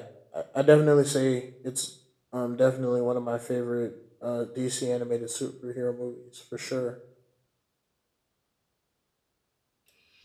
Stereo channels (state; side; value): identical; both; correlation 1.00